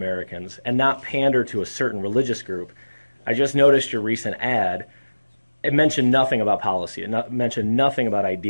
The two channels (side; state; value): both; inverted; correlation -1.00